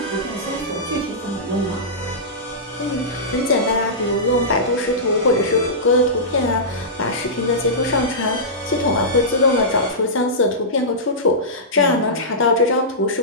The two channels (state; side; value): normal; both; correlation -0.16